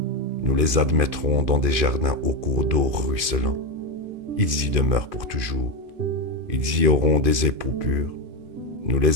nous les admettrons dans des jardins au cours d'eau ruisselant. Ils y demeurent pour toujours. Ils y auront des époux purs. Nous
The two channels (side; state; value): left; late; 2.5 ms